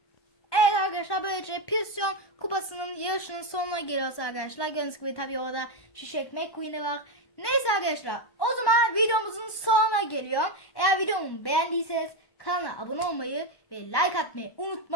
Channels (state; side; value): late; right; 1.1 ms